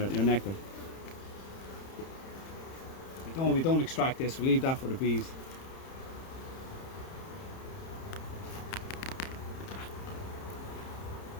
nectar. We don't extract this, we leave that for the bees.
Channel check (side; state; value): right; late; 30 ms